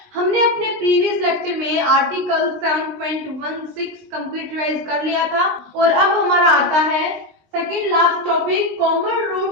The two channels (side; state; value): left; late; 19 ms